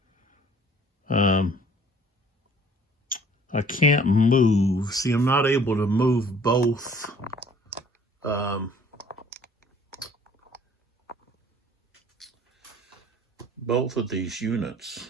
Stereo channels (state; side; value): normal; both; correlation 0.55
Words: I can't move. See, I'm not able to move both both of these units.